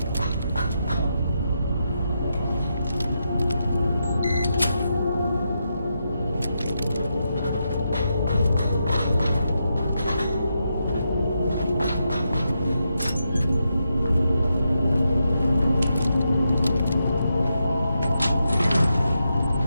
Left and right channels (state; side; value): inverted; both; correlation -0.84